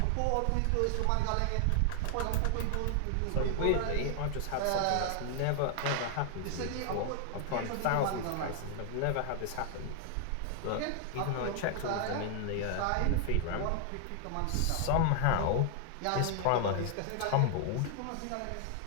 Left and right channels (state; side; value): different; both; correlation 0.00